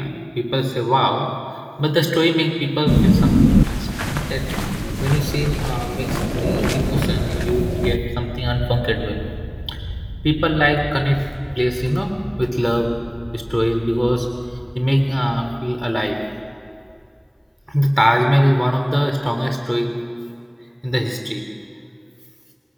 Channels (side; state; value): both; identical; correlation 1.00